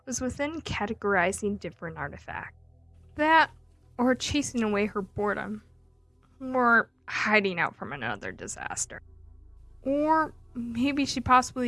was within categorizing different artifacts. That, or chasing away her boredom, or hiding out from another disaster. Or maybe she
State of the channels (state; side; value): identical; both; correlation 1.00